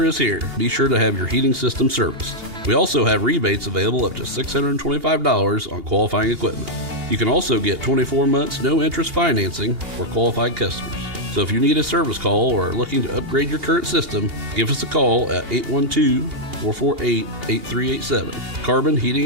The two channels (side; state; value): left; late; 2.8 ms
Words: is here. Be sure to have your heating system serviced. We also have rebates available up to $625 on qualifying equipment. You can also get 24 months no-interest financing for qualified customers. So if you need a service call or are looking to upgrade your current system, give us a call at 812-448-8387. Carbon